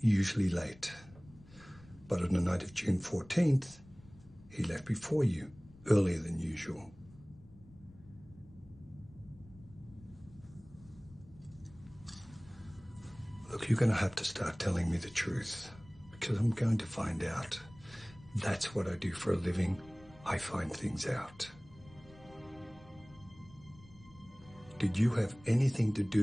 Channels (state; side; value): noise; left; rumble, 22 dB below the sound